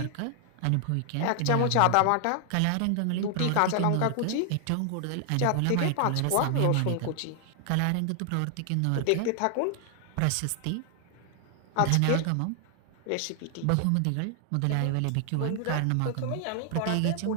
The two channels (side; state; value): both; different; correlation 0.00